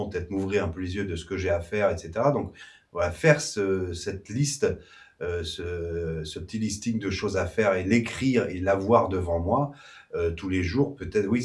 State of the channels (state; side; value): identical; both; correlation 1.00